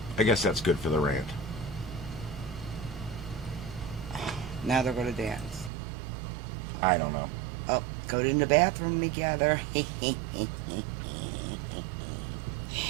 I guess that's good for the rant. Now they're going to dance. I don't know. Oh, go in the bathroom together. Oh,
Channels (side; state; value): left; drops out; at 5.7 s